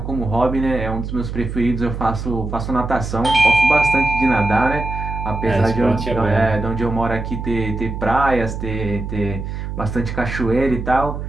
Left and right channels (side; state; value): right; noise; hum, 6 dB below the sound